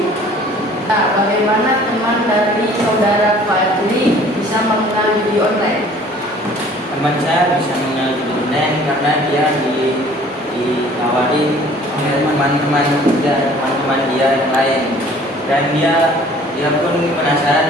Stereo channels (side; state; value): both; normal; correlation 0.52